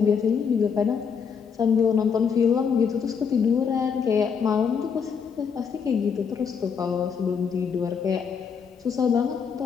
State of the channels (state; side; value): quieter; right; 6.5 dB